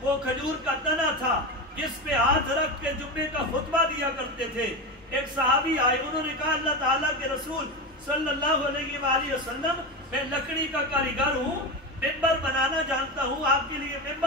کھجور کا تنا تھا جس پہ ہاتھ رکھ کے جمعے کا خطبہ دیا کرتے تھے۔ ایک صحابی آئے، انہوں نے کہا اللہ تعالیٰ کے رسول صلی اللہ علیہ وآلہ وسلم میں لکڑی کا کاریگر ہوں، ممبر بنانا جانتا ہوں، آپ کے لیے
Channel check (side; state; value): both; normal; correlation 0.19